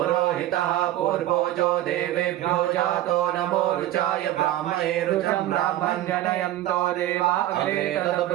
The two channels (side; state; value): left; quieter; 13.9 dB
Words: पूर्वो जो देवेभ्यो जातो नमो रुचाय ब्राह्मणे रुचं ब्राह्मण जनयन्तो देवा अग्रे